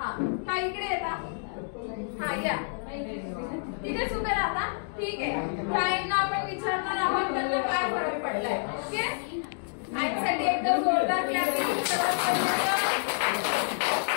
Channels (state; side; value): silent; right; digital silence